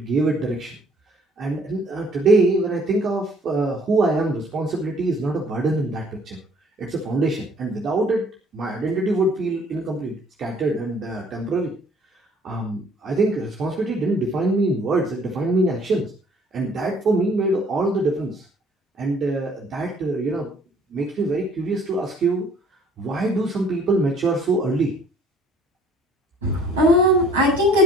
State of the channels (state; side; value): normal; both; correlation 0.57